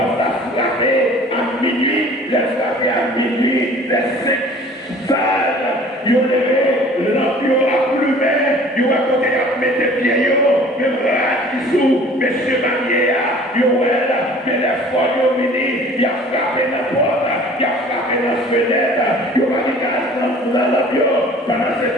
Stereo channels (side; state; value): both; normal; correlation 0.48